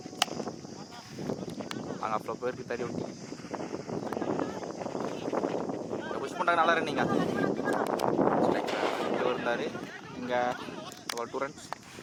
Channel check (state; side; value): identical; both; correlation 1.00